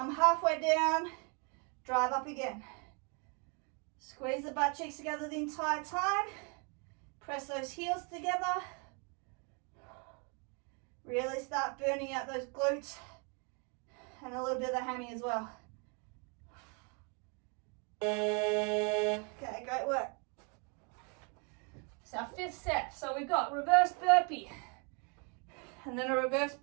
halfway down, drive up again. Squeeze the butt cheeks together the entire time, press those heels together. Really start burning out those glutes and a little bit of the hammy as well. Okay, great work. It's our fifth set. So we've got reverse burpee and then a reverse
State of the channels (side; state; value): left; quieter; 35.7 dB